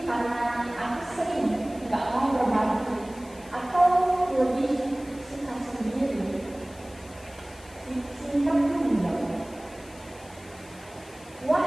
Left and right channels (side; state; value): left; noise; hiss, 22 dB below the sound